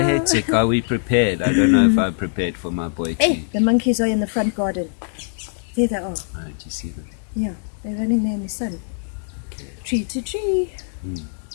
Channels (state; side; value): silent; right; digital silence